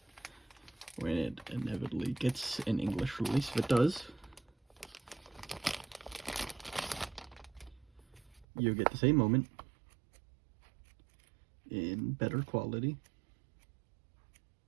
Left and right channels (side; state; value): left; drops out; at 8.5 s